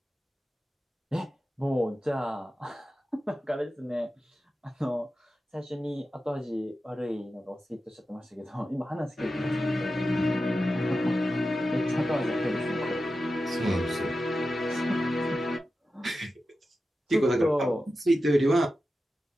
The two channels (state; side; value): normal; both; correlation 0.92